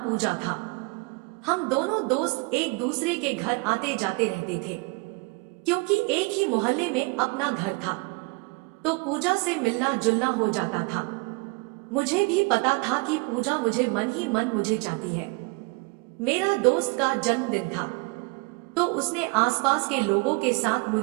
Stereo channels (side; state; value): left; quieter; 28.3 dB